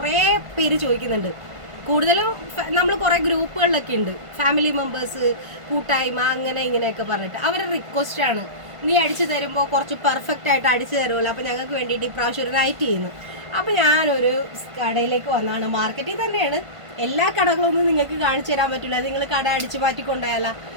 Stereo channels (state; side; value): late; left; 1.5 ms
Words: പേര് ചോദിക്കുന്നുണ്ട്. കൂടുതലും നമ്മൾ കുറേ ഗ്രൂപ്പുകളിലൊക്കെ ഉണ്ട്, ഫാമിലി മെമ്പേഴ്സ്, കൂട്ടായ്മ, അങ്ങനെ ഇങ്ങനെയൊക്കെ പറഞ്ഞിട്ട് അവരുടെ റിക്വസ്റ്റാണ് നീ അടിച്ചു തരുമ്പോൾ കുറച്ച് പെർഫെക്റ്റ് ആയിട്ട് അടിച്ചു തരുമല്ലോ, അപ്പോൾ ഞങ്ങൾക്ക് വേണ്ടിയിട്ട് ഇപ്രാവശ്യം ഒരു നൈറ്റ് ചെയ്യുന്നു. അപ്പോൾ ഞാനൊരു കടയിലേക്ക് വന്നാണ്, മാർക്കറ്റിൽ തന്നെയാണ്. എല്ലാ കടകളൊന്നും നിങ്ങൾക്ക് കാണിച്ചു തരാൻ പറ്റില്ല, നിങ്ങൾ കട അടിച്ചു മാറ്റിക്കൊണ്ടായാല.